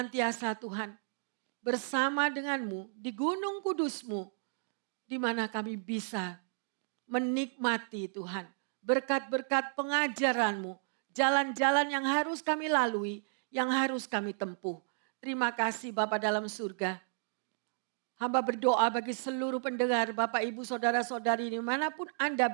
Tuhan bersama denganmu di gunung kudusmu, di mana kami bisa menikmati Tuhan berkat-berkat pengajaranmu, jalan-jalan yang harus kami lalui, yang harus kami tempuh. Terima kasih Bapa dalam surga. Hamba berdoa bagi seluruh pendengar, Bapak, Ibu, Saudara-saudari dimanapun Anda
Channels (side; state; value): left; silent; digital silence